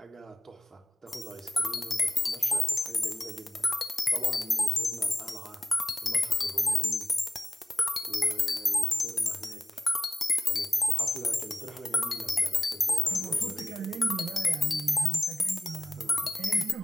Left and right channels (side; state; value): both; normal; correlation 0.93